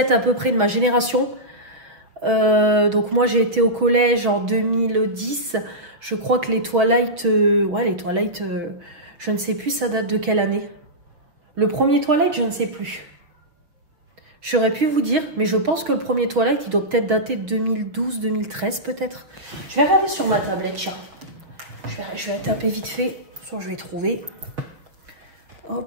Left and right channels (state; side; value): late; left; 6.0 ms